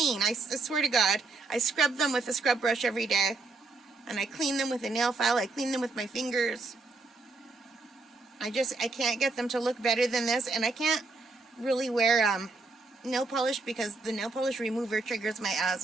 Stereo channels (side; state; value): left; quieter; 3.6 dB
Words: I swear to God. I scrub them with a scrub brush every day. And I clean them with a nail file. I clean them with my fingers. I can't get them to look better than this. And I can't really wear nail polish because the nail polish remover triggers my